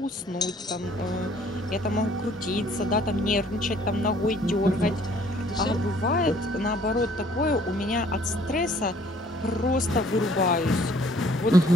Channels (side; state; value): both; normal; correlation 0.58